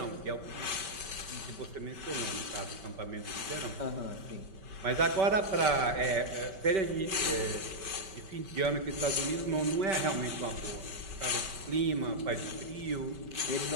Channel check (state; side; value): late; left; 5.2 ms